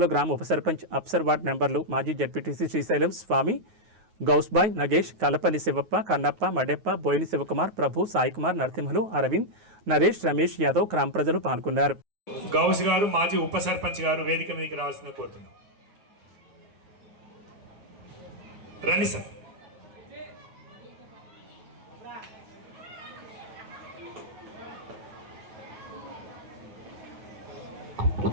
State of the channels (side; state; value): left; late; 9.4 ms